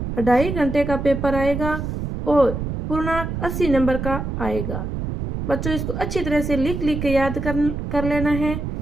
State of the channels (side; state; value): right; noise; rumble, 4 dB below the sound